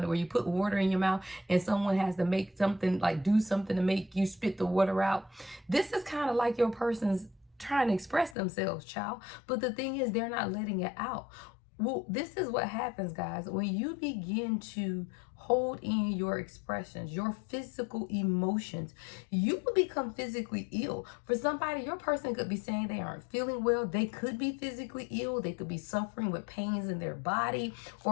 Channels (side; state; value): right; drops out; at 8.3 s